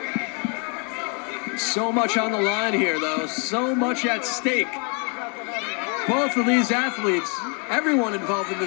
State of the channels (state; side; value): quieter; right; 36.5 dB